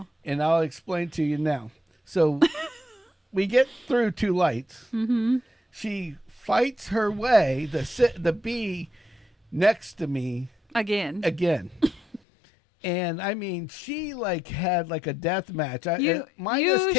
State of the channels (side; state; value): right; drops out; at 12.2 s